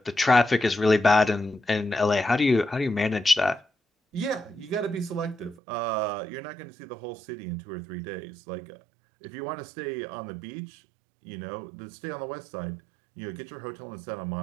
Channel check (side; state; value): left; drops out; at 5.6 s